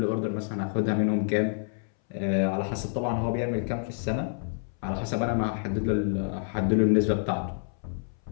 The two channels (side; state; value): right; silent; 59 dB below the other